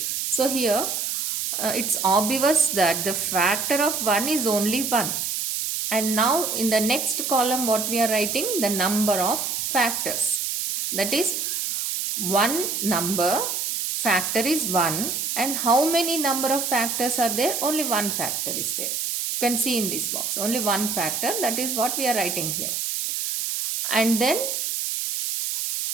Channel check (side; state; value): right; noise; hiss, 2 dB below the sound